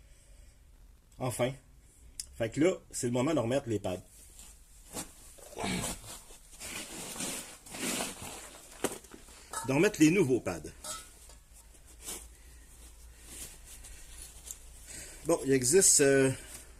Enfin. Fait que là, c'est le moment de remettre les pads. De remettre les nouveaux pads. Bon, il existe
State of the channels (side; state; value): both; identical; correlation 1.00